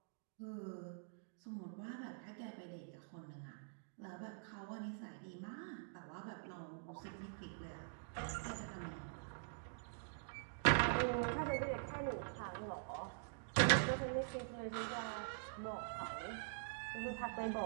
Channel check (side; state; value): left; silent; digital silence